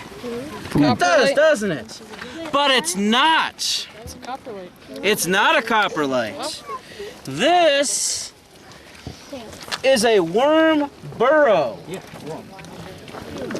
It does, doesn't it? But it's not. It's a coprolite. It's not a coprolite. This is a worm burrow. Yeah, worm.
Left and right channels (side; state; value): both; identical; correlation 1.00